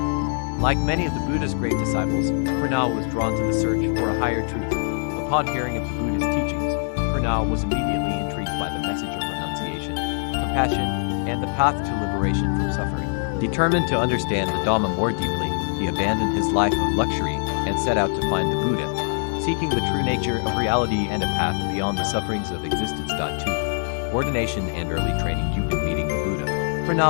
Like many of the Buddha's great disciples, Purna was drawn to the search for a higher truth. Upon hearing of the Buddha's teachings, Purna was immediately intrigued by the message of renunciation, compassion, and the path to liberation from suffering. Determined to understand the Dhamma more deeply, he abandoned his life of luxury and set out to find the Buddha, seeking the true nature of reality and a path beyond the sufferings of existence. 2. Ordination and early training. Meeting the Buddha,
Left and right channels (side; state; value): right; silent; digital silence